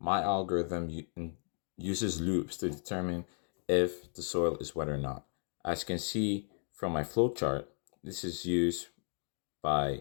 my algorithm uses loops to determine if the soil is wet or not. As you can see from my flowchart, this is used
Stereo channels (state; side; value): silent; right; 55 dB below the other